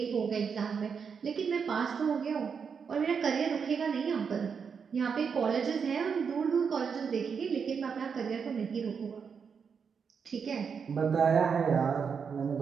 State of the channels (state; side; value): quieter; left; 6.3 dB